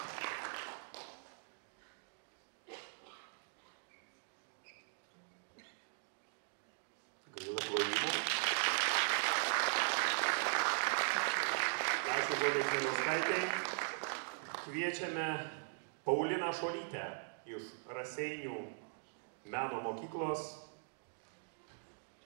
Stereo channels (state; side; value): silent; left; digital silence